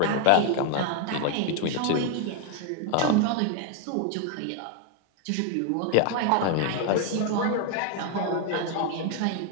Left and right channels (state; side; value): different; both; correlation 0.01